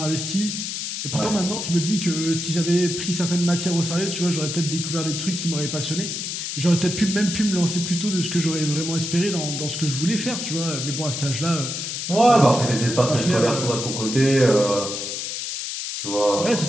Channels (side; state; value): left; noise; hiss, 4 dB below the sound